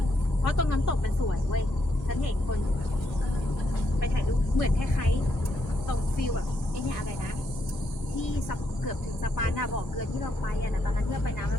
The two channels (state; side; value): late; right; 1.5 ms